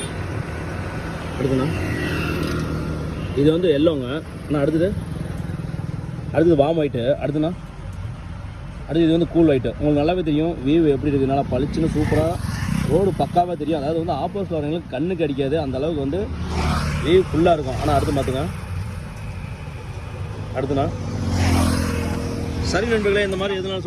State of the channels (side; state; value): both; identical; correlation 1.00